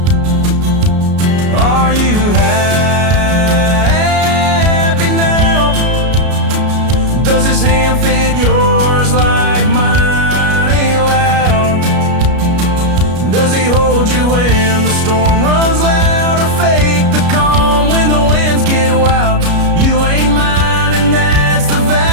Are you happy now? Does his hand fit yours like mine ain't loud? Does he hold you when the storm runs loud, or fake the calm when the winds get wild? You ain't mine and that's the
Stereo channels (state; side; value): late; left; 33 ms